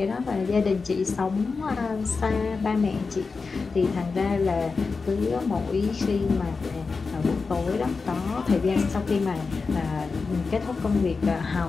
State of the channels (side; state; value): right; quieter; 4.5 dB